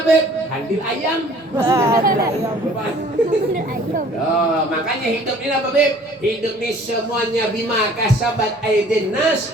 Beb? Handil ayam. Makanya hidup ini apa Beb? Hidup ini semuanya bima kasabat aydin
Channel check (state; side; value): normal; both; correlation 0.52